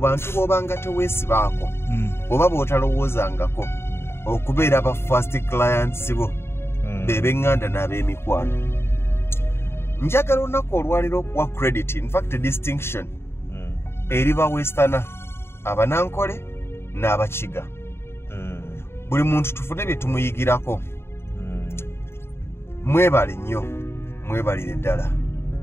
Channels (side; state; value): right; late; 0.12 ms